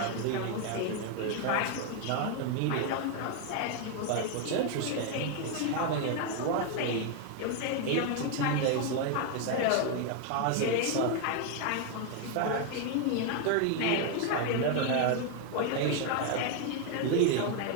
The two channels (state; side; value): different; both; correlation 0.01